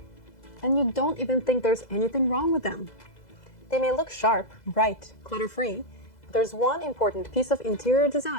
And you don't even think there's anything wrong with them. They may look sharp, bright, clutter-free, but there's one important piece of interior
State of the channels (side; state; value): right; late; 2.0 ms